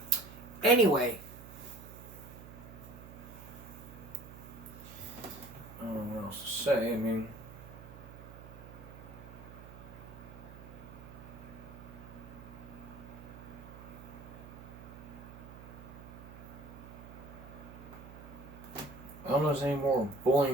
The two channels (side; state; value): right; noise; hum, 15 dB below the sound